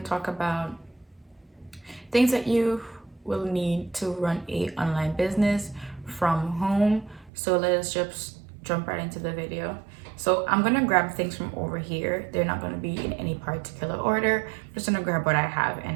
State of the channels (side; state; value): left; drops out; at 7.3 s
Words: to talk about things that you will need to run a online business from home. So let's just jump right into the video. So I'm going to grab things from over here. They're not going to be in any particular order. I'm just going to grab what I have and